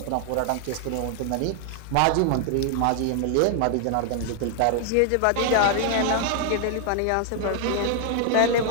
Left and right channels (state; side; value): different; both; correlation 0.00